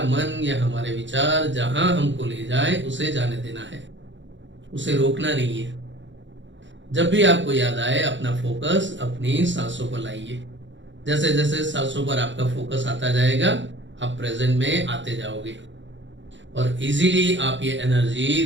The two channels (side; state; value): left; late; 0.54 ms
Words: मन या हमारे विचार जहां हमको ले जाए उसे जाने देना है, उसे रोकना नहीं है। जब भी आपको याद आए अपना फोकस अपनी सांसों पर लाइए। जैसे जैसे सांसों पर आपका फोकस आता जाएगा, आप प्रेजेंट में आते जाओगे और इजीली आप ये एनर्जी